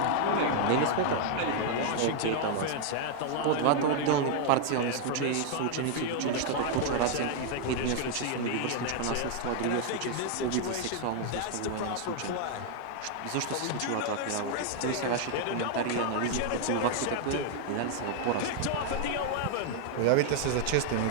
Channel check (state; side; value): different; both; correlation 0.00